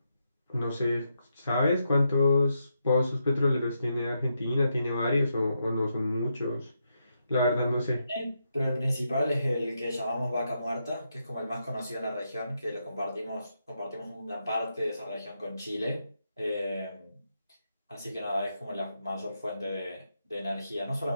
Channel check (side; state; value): both; inverted; correlation -0.82